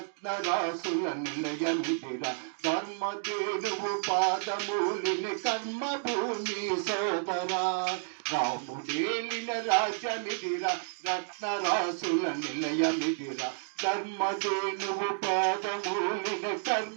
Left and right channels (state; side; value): silent; left; digital silence